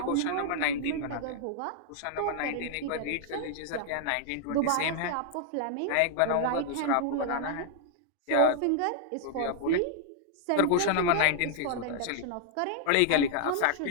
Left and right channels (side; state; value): both; different; correlation -0.01